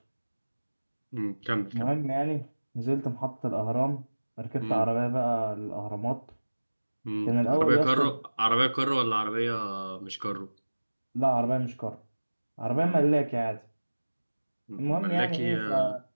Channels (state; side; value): inverted; both; correlation -1.00